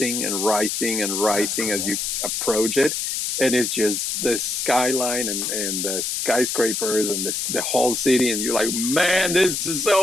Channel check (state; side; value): noise; left; hiss, 1 dB below the sound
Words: and rising and rising as you approach it. And it's just the skyline and the skyscrapers and the whole city. And you're like, man, this is